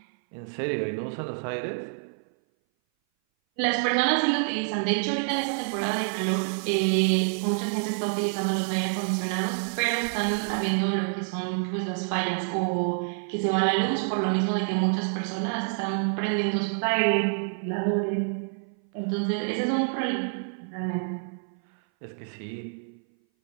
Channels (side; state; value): left; silent; 58 dB below the other